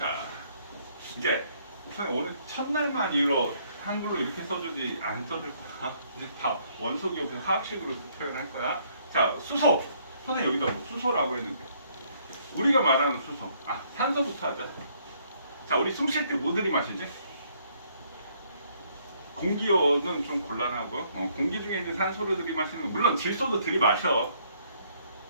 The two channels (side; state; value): both; inverted; correlation -0.67